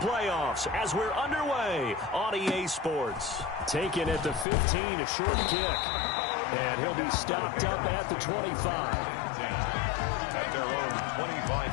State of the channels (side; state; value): right; drops out; at 4.5 s